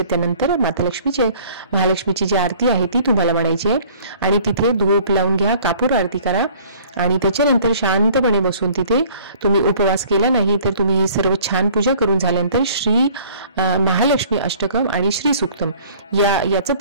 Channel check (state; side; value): inverted; both; correlation -0.53